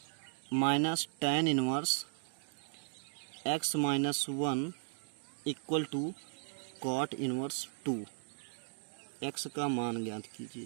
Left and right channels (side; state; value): left; silent; digital silence